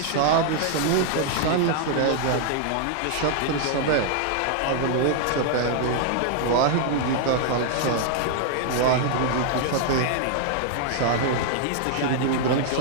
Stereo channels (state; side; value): different; both; correlation 0.00